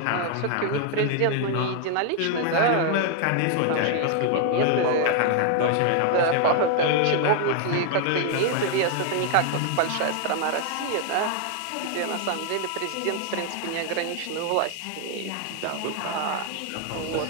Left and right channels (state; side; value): different; both; correlation 0.00